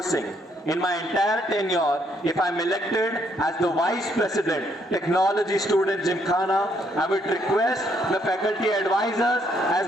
In my entire tenure, if I'm elected as the Vice President, Technology Student Gymkhana, I would request the faculty advisors as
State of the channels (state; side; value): normal; both; correlation 0.71